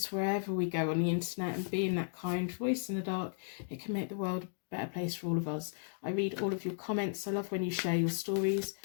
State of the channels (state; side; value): silent; right; digital silence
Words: wherever we go on the internet and being that kind voice in the dark, it can make the world a better place for all of us. I read all of your comments. I love when you share your stories.